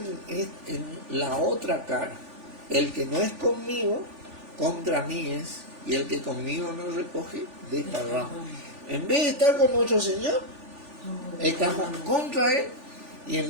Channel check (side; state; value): left; late; 3.4 ms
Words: en la otra cara. El que no es conmigo, contra mí es, y el que conmigo no recoge, desparrama. En vez de estar con nuestro Señor, estamos contra Él, y